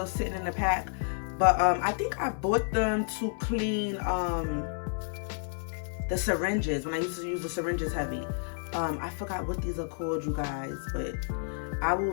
sitting in the pack. But I think I bought them to clean the syringes, when I used to use the syringes heavy. I forgot what these are called, you guys, but I will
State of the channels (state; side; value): silent; right; 57 dB below the other